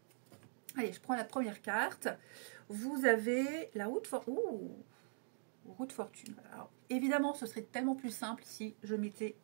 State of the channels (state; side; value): silent; left; digital silence